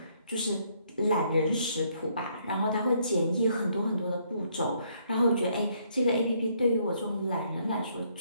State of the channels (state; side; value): inverted; both; correlation -0.69